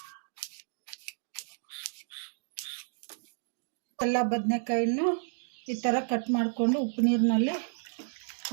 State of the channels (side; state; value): left; silent; digital silence